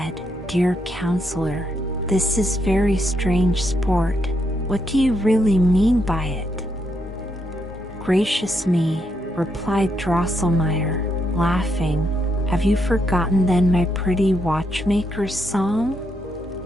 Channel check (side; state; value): both; normal; correlation 0.78